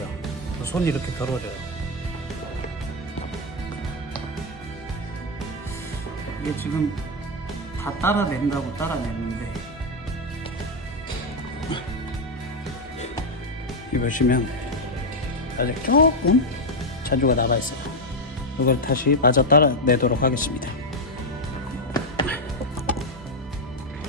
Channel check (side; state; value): both; normal; correlation 0.05